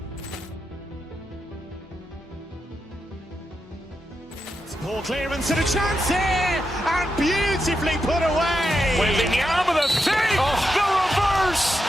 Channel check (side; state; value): both; normal; correlation 0.86